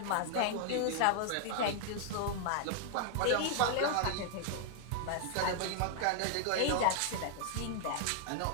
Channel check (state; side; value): different; both; correlation 0.00